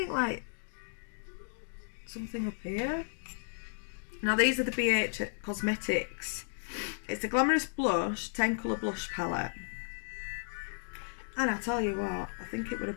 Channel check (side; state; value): right; silent; digital silence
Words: like something up here. Now these are the BH Cosmetics. It's the Glamorous Blush 10 colour blush palette, and I tell you what, I think it was